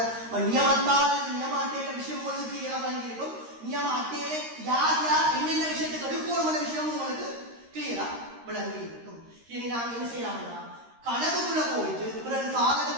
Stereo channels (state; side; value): late; left; 13 ms